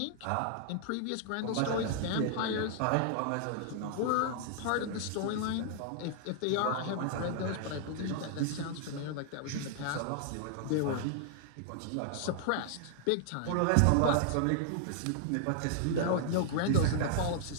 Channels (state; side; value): different; both; correlation -0.01